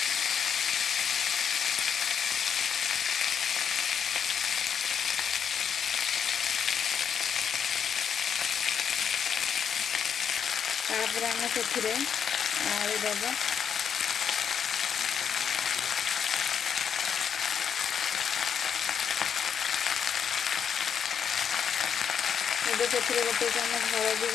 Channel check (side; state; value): right; quieter; 7.5 dB